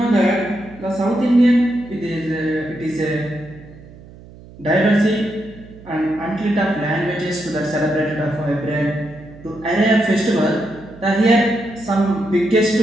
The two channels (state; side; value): noise; right; hum, 20 dB below the sound